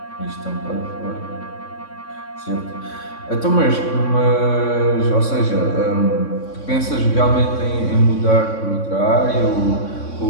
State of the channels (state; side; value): late; right; 3.6 ms